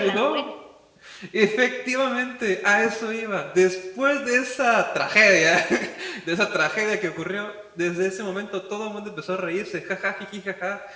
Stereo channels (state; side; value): identical; both; correlation 1.00